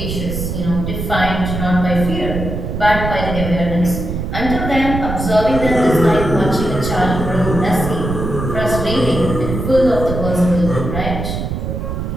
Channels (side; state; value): right; noise; rumble, 4 dB below the sound